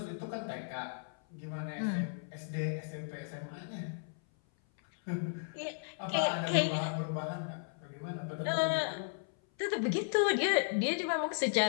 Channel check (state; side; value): silent; right; 54 dB below the other